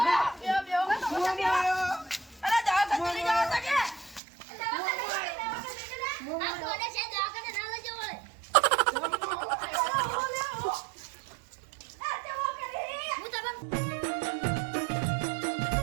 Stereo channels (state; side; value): drops out; left; at 4.2 s